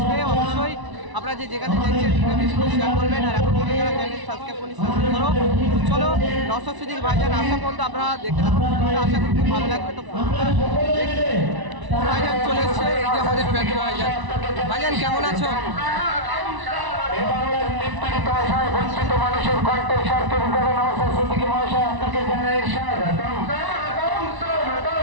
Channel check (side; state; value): left; late; 1.0 ms